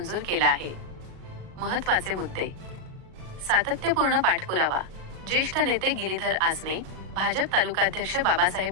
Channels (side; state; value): left; late; 38 ms